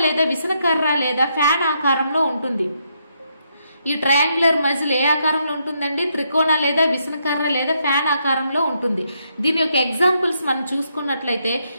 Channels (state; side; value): inverted; both; correlation -0.77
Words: లేదా విసనకర్ర లేదా ఫ్యాన్ ఆకారంలో ఉంటుంది. ఈ ట్రయాంగులర్ మజిల్ ఏ ఆకారంలో ఉంటుందండి? త్రికోణ లేదా విసనకర్ర లేదా ఫ్యాన్ ఆకారంలో ఉంటుంది. దీని యొక్క ఎగ్జాంపుల్స్ మనం చూసుకున్నట్లయితే